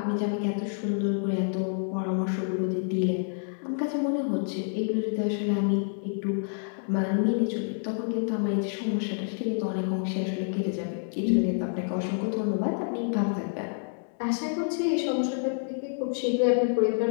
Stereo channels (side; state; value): right; silent; digital silence